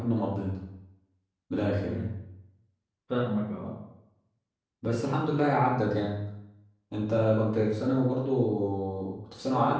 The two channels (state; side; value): identical; both; correlation 1.00